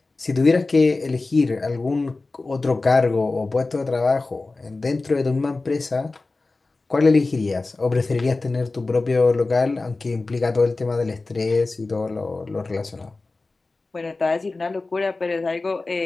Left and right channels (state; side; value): quieter; right; 3.5 dB